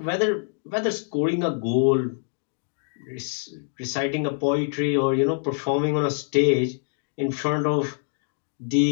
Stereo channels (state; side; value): silent; right; digital silence